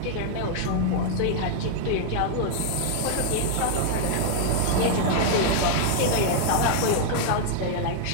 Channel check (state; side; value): different; both; correlation 0.00